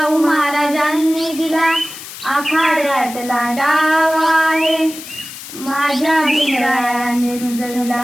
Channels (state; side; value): noise; left; hiss, 13 dB below the sound